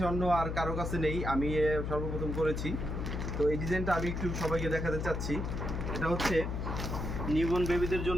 অন্য আর কারো কাছে নেই, আমি সর্বপ্রথম করেছি। তো এই ডিজাইনটা আমি একটু সবাইকে দেখাতে চাচ্ছি। এটা হচ্ছে নিউবর্ন বেবিদের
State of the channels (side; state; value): left; noise; hum, 3 dB below the sound